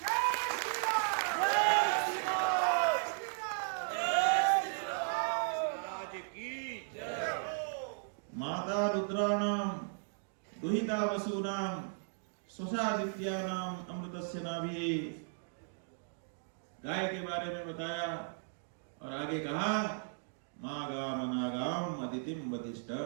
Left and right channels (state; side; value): silent; left; digital silence